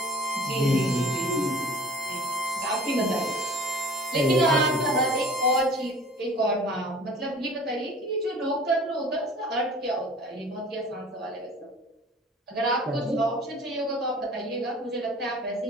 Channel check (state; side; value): normal; both; correlation 0.45